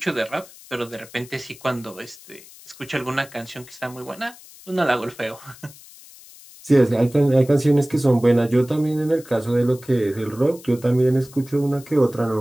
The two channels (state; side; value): noise; left; hiss, 21 dB below the sound